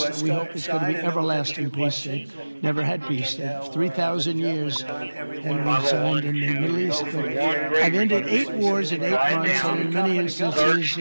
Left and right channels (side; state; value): both; inverted; correlation -1.00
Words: We hope it's going to be everlasting peace. They never had peace. 3,000 years, and we signed in the Middle East. But I've ended 8 wars in 8 months, and in many instances,